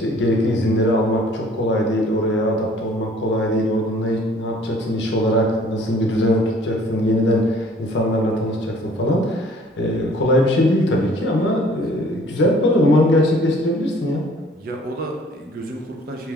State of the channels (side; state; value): both; normal; correlation 0.55